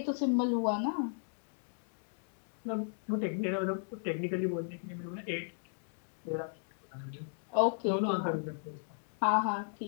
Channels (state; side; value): silent; right; digital silence